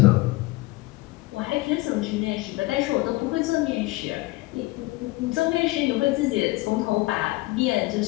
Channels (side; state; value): right; quieter; 20.8 dB